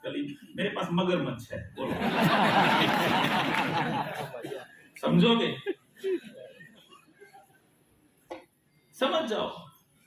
मेरे पास मगरमच्छ है, बोलो समझोगे? समझ जाओ,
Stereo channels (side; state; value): both; identical; correlation 1.00